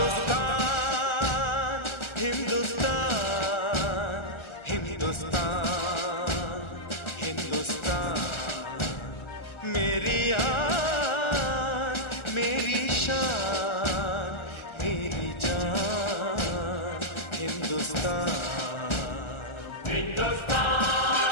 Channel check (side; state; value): right; late; 1.4 ms